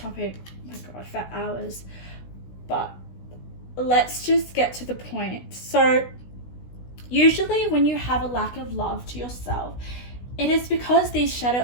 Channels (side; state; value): right; late; 16 ms